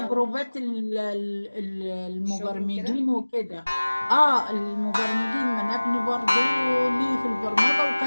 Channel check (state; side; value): inverted; both; correlation -1.00